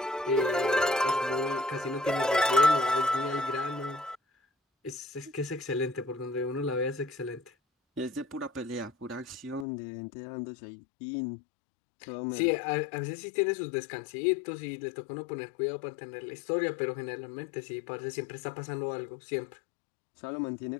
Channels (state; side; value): drops out; right; at 9.7 s